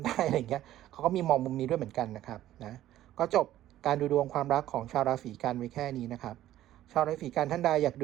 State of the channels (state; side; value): quieter; left; 13.5 dB